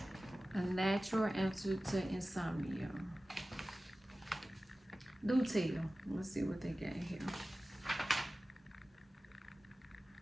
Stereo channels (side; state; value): both; normal; correlation 0.96